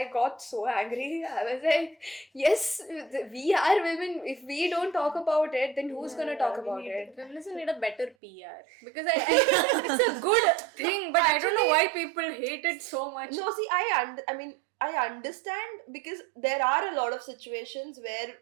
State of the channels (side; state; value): left; drops out; at 8.2 s